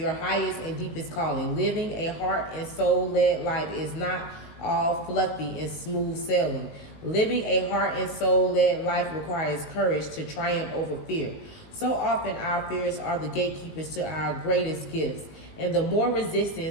highest and deepest calling. Living a heart and soul-led life is not all fluffy and smooth sailing. Living a heart and soul-led life requires courage to triumph over fear. So often our fears are the gatekeepers to our greatest gifts. And the more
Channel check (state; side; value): late; right; 19 ms